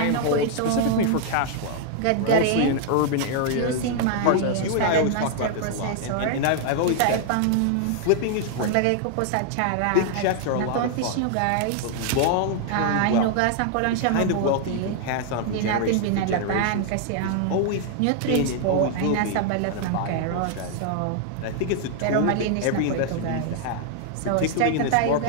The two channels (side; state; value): both; different; correlation 0.00